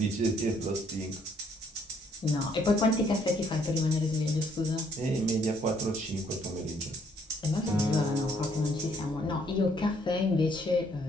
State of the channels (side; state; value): both; normal; correlation 0.66